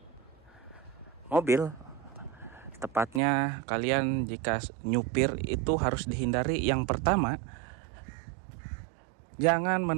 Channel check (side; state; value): left; drops out; at 3.2 s